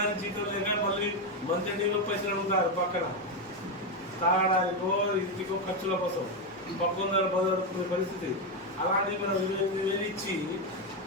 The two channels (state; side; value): normal; both; correlation 0.08